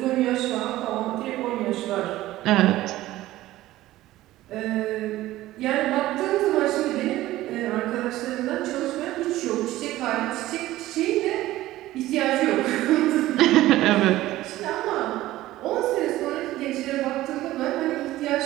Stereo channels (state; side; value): quieter; left; 15.9 dB